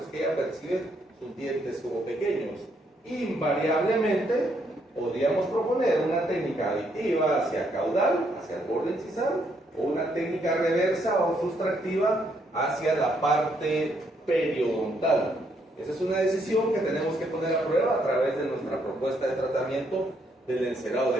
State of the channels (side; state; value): both; normal; correlation 0.73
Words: es que ella percibe sus dientes como pequeños. Invariablemente podríamos proponer una técnica aditiva hacia caudal, hacia el borde incisal, o una técnica reversa o sustractiva hacia la parte periodontal. Esa es una decisión que tenemos que poner a prueba a través de nuestra propuesta de tratamiento del encerado